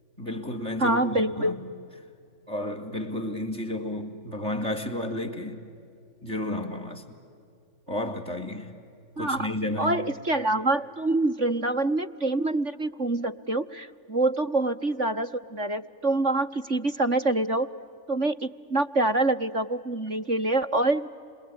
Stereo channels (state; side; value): late; left; 3.5 ms